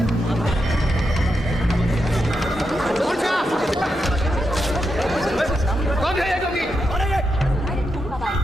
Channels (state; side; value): normal; both; correlation 0.85